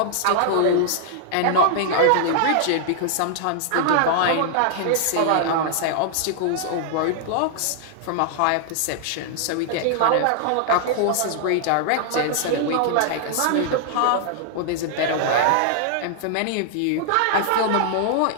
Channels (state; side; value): different; both; correlation 0.00